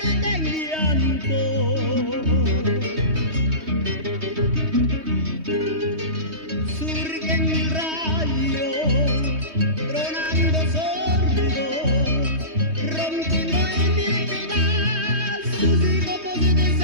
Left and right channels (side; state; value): left; late; 3.2 ms